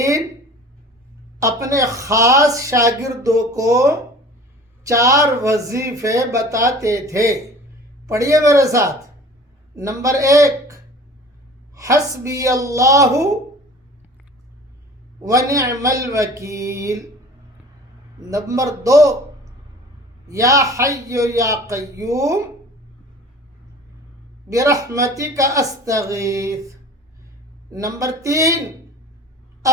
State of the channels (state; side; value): normal; both; correlation 0.44